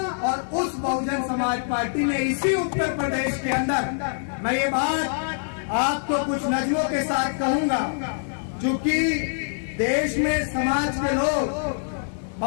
और उस बहुजन समाज पार्टी ने इसी उत्तर प्रदेश के अंदर, मैं ये बात आपको कुछ नज़्मों के साथ कहूंगा, क्योंकि देश में समाज के लोग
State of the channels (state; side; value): silent; right; digital silence